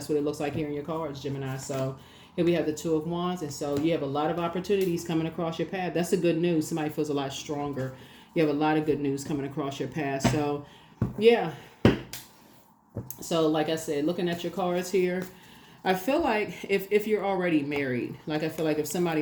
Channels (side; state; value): both; identical; correlation 1.00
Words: what it looks like here in your cards, Gemini. So here we have the 2 of Wands. And so you have a lot of opportunities coming across your path. That's the good news. Somebody feels a lot stronger. You have a lot of good news coming across your path. So yeah. So like I said, looking at your cards here, I feel like if you're already married, like I feel like if